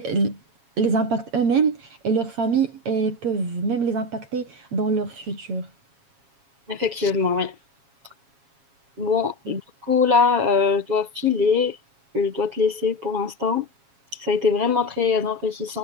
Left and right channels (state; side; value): late; left; 7.3 ms